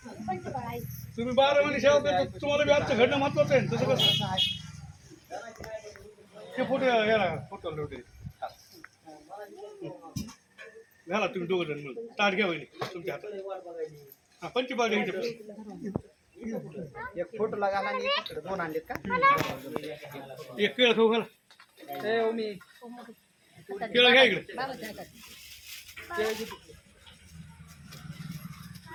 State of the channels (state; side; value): identical; both; correlation 1.00